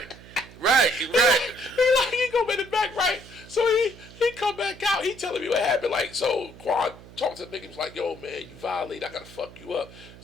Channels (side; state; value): right; noise; hum, 19 dB below the sound